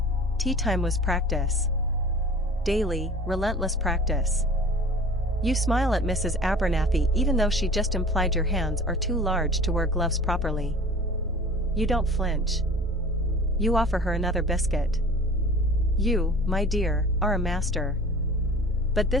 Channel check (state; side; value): normal; both; correlation 0.43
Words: Tea time was practice. Daily, relentless practice. You smile at Mrs. Abernathy even though she just implied your hands are too large to wear gloves properly. You don't flinch. You offer her another biscuit. You, my dear, are a master. But